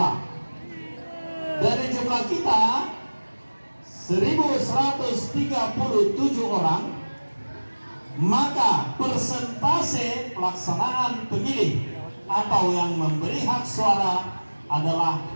Dari jumlah kita 1137 orang, maka persentase pelaksanaan pemilih atau yang memberi hak suara adalah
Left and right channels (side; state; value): both; inverted; correlation -1.00